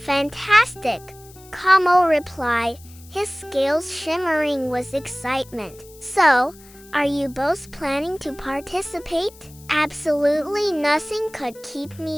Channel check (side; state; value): left; noise; hiss, 23 dB below the sound